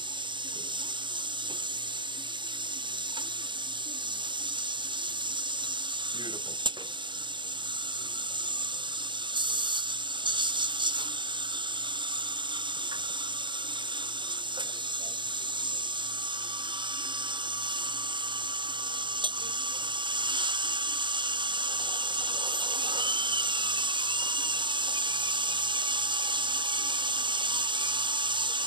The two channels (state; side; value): late; left; 0.23 ms